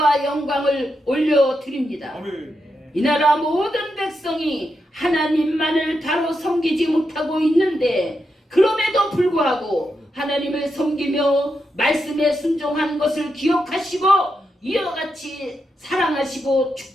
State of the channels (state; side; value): normal; both; correlation 0.85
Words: 영광을 올려드립니다. 아멘. 이 나라 모든 백성이 하나님만을 바로 섬기지 못하고 있는데 그럼에도 불구하고 하나님을 섬기며 말씀에 순종한 것을 기억하시고 이와 같이 사랑하시고